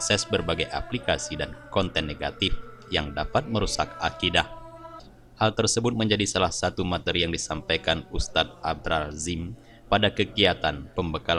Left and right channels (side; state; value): both; identical; correlation 1.00